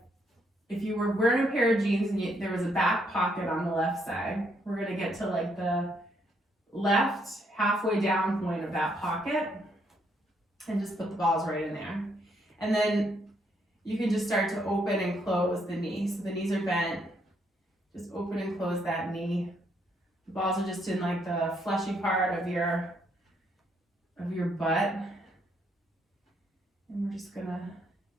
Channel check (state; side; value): normal; both; correlation 0.73